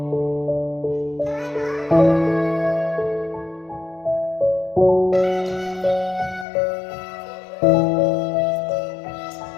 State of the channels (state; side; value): drops out; right; at 6.5 s